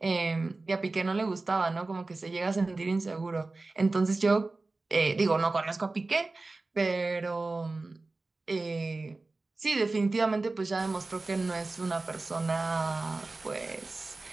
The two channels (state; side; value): quieter; left; 3.4 dB